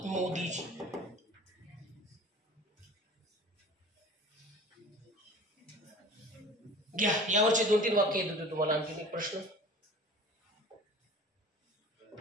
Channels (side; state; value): both; normal; correlation 0.41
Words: मोदीजी. घ्या यावरचे 2-3 वाक्य येत होते तुम्हाला. आणखी एक प्रश्न,